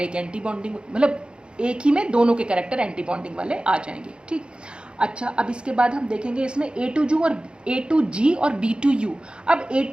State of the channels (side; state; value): left; late; 0.053 ms